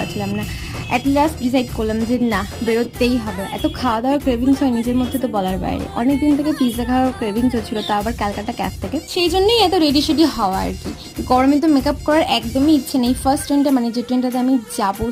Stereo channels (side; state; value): both; identical; correlation 1.00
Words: না। অ্যাট লাস্ট ডিসাইড করলাম যে না, বেরোতেই হবে। এত খাওয়া দাওয়ার ক্রেভিংস হয় নিজের মধ্যে, তো বলার বাইরে। অনেক দিন থেকে পিৎজা খাওয়ার ক্রেভিংস হচ্ছিল, তা আবার ক্যালকাটা ক্যাফ থেকে। সেই জন্যই এত রেডি সেডি হওয়া আর কি। গরমে তো মেকআপ করার একদমই ইচ্ছে নেই। ফার্স্ট ট্রেনটা, মানে যে ট্রেনটাতে আমি যাবো,